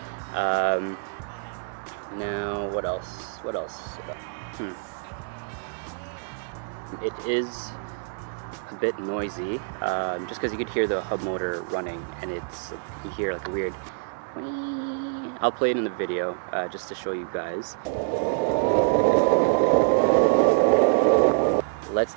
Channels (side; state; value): left; silent; digital silence